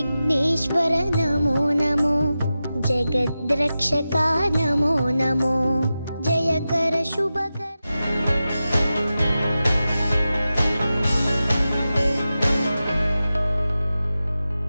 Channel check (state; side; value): inverted; both; correlation -0.93